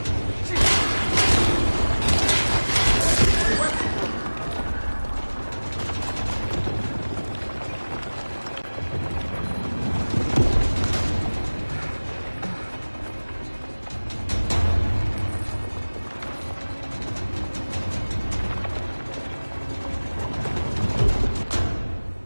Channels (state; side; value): inverted; both; correlation -1.00